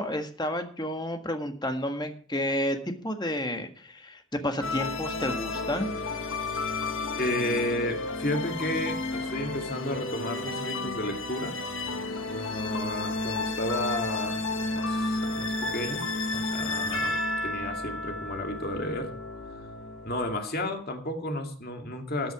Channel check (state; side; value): normal; both; correlation 0.33